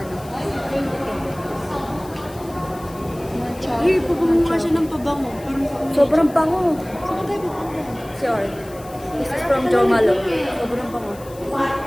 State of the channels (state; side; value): noise; left; hiss, 21 dB below the sound